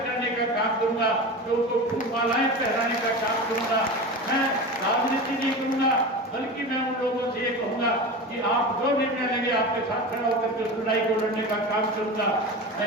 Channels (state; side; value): normal; both; correlation 0.28